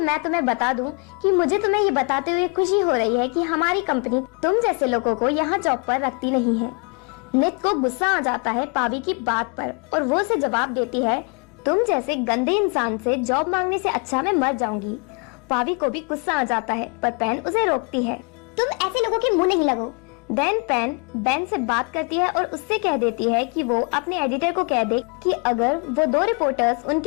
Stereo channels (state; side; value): quieter; right; 34.3 dB